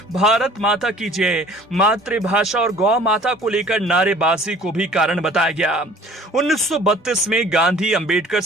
भारत माता की जय, मातृभाषा और गौ माता को लेकर नारेबाजी को भी कारण बताया गया। 1932 में गांधी अंबेडकर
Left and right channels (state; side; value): normal; both; correlation 0.50